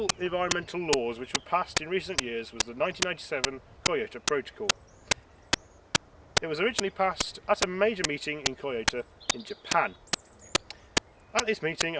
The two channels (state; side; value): identical; both; correlation 1.00